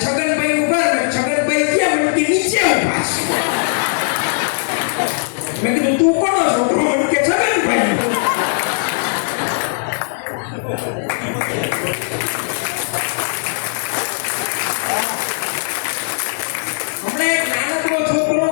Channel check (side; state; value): right; silent; digital silence